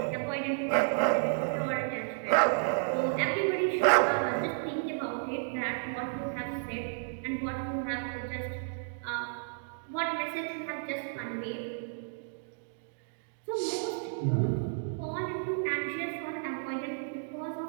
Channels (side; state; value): left; silent; digital silence